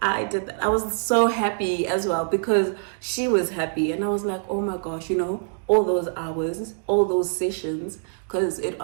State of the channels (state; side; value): silent; left; digital silence